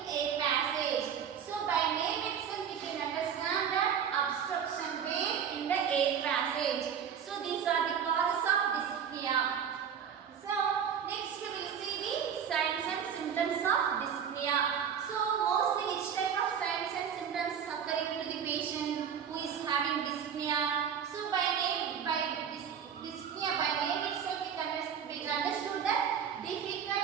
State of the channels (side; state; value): left; quieter; 7.9 dB